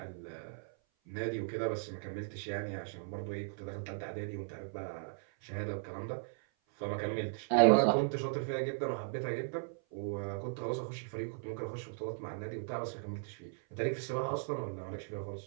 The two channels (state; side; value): silent; left; 53 dB below the other